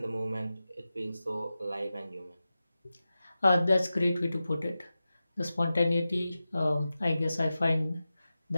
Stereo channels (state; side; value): inverted; both; correlation -0.94